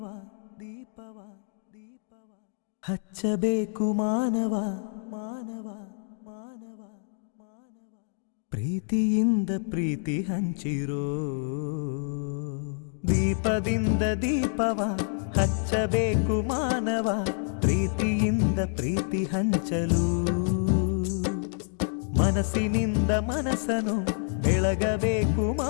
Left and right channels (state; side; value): silent; right; 59 dB below the other